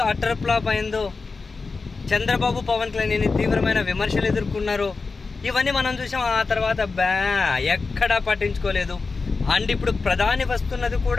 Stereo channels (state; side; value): quieter; right; 4.2 dB